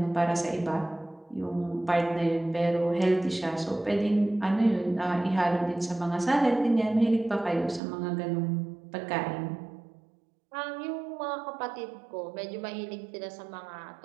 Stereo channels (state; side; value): drops out; left; at 7.8 s